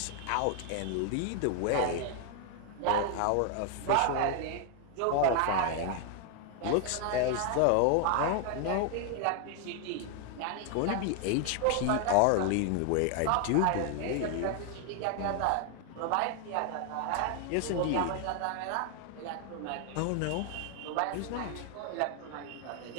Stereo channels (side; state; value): both; different; correlation 0.00